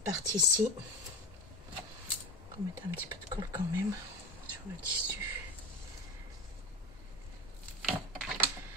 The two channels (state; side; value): normal; both; correlation 0.26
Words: partie-ci. On va mettre un petit peu de colle quand même sur le tissu.